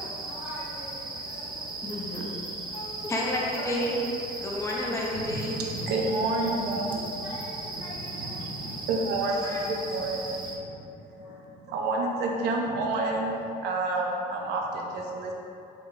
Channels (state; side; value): normal; both; correlation 0.33